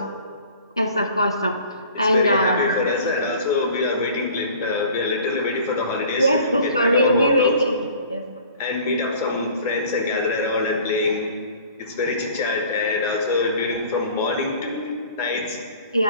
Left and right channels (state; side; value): inverted; both; correlation -0.48